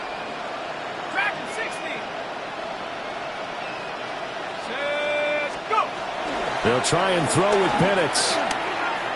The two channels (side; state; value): both; identical; correlation 1.00